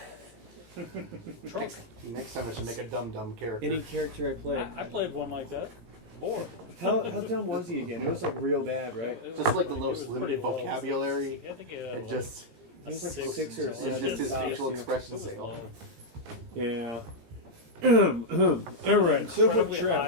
Trump. Next time I should make a dumb character. Any character I play. I played one like that. Or How dumb was he again? It was like real bad, right? Just like the most limited vocabulary. I think It just He was like 6 or it's 7. just his tops, facial yeah. expressions say, "Oh, Yeah. All right. So for high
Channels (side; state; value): left; late; 17 ms